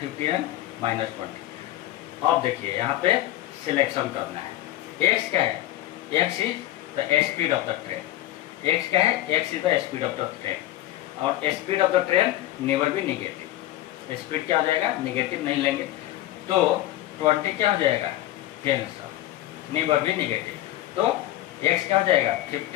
15 एंड माइनस 20। अब देखिए यहाँ पे सिलेक्शन करना है। x क्या है, x is the speed of the train. x क्या है, x is the speed of the train और speed of the train never be negative. Speed क्या हो जाएगा, निगेटिव नहीं लेंगे तो 20 क्या हो जाएगा, कैंसल, नेवर बी निगेटिव। तो x क्या हो जाएगा,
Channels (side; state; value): right; quieter; 14.6 dB